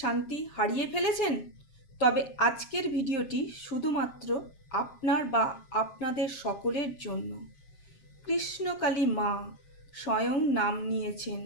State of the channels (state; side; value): late; right; 7.4 ms